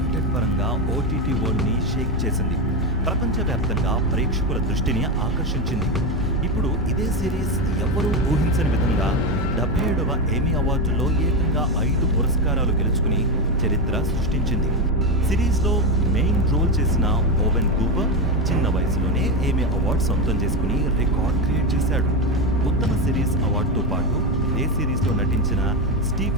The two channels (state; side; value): normal; both; correlation 0.13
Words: పరంగా ఓటీటీ వరల్డ్ ని షేక్ చేసింది. ప్రపంచవ్యాప్తంగా ప్రేక్షకుల దృష్టిని ఆకర్షించింది. ఇప్పుడు ఇదే సిరీస్ ఎవరూ ఊహించని విధంగా 77వ ఎమ్మీ అవార్డులో ఏకంగా 5 పురస్కారాలు గెలుచుకుని చరిత్ర సృష్టించింది. సిరీస్లో మెయిన్ రోల్ చేసిన ఓవెన్ కూపర్ చిన్న వయసులోనే ఎమ్మీ అవార్డు సొంతం చేసుకుని రికార్డ్ క్రియేట్ చేశాడు. ఉత్తమ సిరీస్ అవార్డుతో పాటు ఇదే సిరీస్లో నటించిన